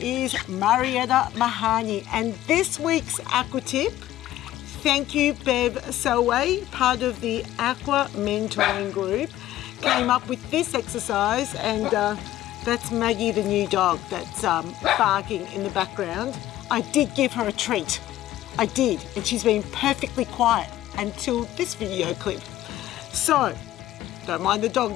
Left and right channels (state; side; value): quieter; right; 14.1 dB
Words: Marietta Mehanni, and this week's Aqua Tip, thank you Bev Selway, part of the Aqua Mentoring Group, came up with this exercise, and that's Maggie the new dog that's barking in the background. I did give her a treat, I did, and she's been perfectly quiet until this video clip. So, don't mind the dog